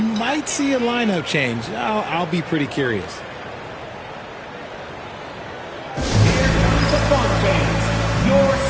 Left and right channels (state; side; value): identical; both; correlation 1.00